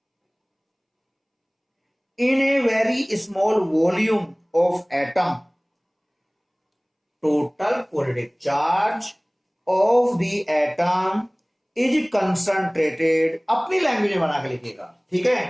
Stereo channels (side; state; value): both; identical; correlation 1.00